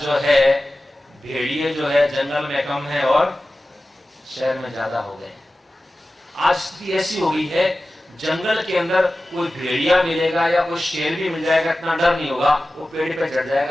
जो है भेड़िए जो है जंगल में कम है और शहर में ज्यादा हो गए। आज स्थिति ऐसी हो गई है, जंगल के अंदर कोई भेड़िया मिलेगा या कोई शेर भी मिल जाएगा, इतना डर नहीं होगा, वो पेड़ पे चढ़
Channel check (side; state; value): both; normal; correlation 0.95